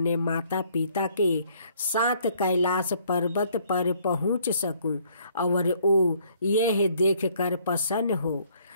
माता पिता के साथ कैलाश पर्वत पर पहुंच सकूं और वो यह देखकर प्रसन्न हो।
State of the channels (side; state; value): both; inverted; correlation -0.63